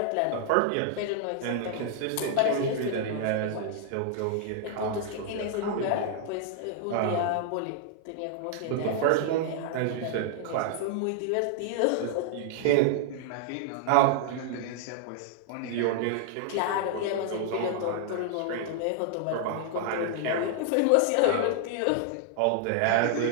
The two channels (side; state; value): both; different; correlation -0.01